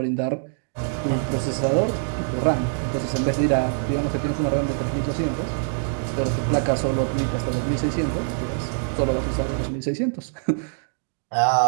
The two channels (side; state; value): left; silent; 63 dB below the other